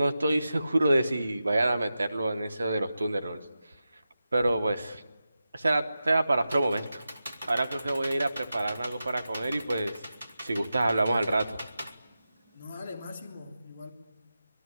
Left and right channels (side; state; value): both; inverted; correlation -0.92